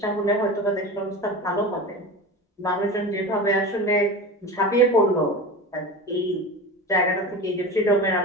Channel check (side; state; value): both; normal; correlation 0.29